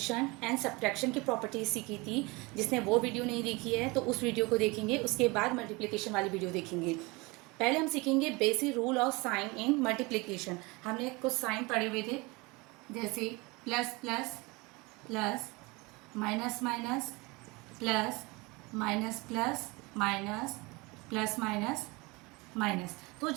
एंड सब्ट्रैक्शन की प्रॉपर्टीज़ सीखी थी। जिसने वो वीडियो नहीं देखी है तो उस वीडियो को देखेंगे, उसके बाद मल्टीप्लिकेशन वाली वीडियो देखेंगे। पहले हम सीखेंगे basic rule of sign in multiplication. हमने कुछ साइन पढ़े हुए थे, जैसे plus plus plus, minus minus plus, minus plus minus, plus minus minus. तो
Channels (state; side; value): quieter; left; 25.1 dB